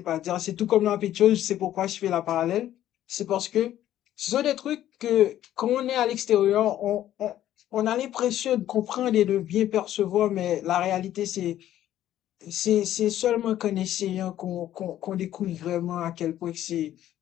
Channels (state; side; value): quieter; right; 12.4 dB